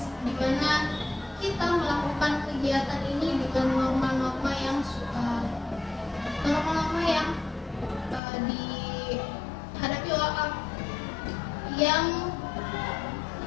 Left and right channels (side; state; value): right; drops out; at 8.2 s